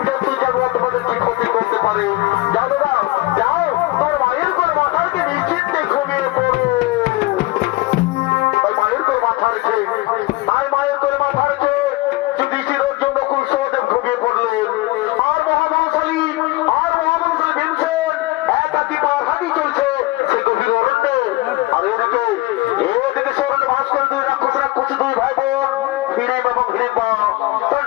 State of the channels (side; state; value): right; quieter; 20.3 dB